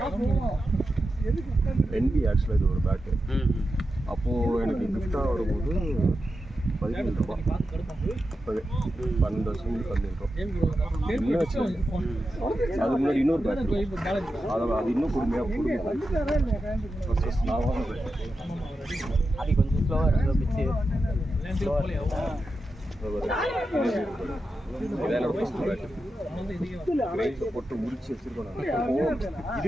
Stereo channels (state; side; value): normal; both; correlation 0.90